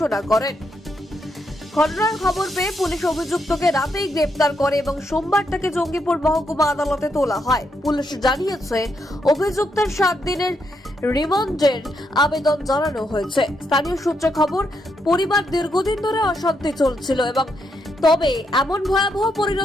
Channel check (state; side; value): normal; both; correlation 0.79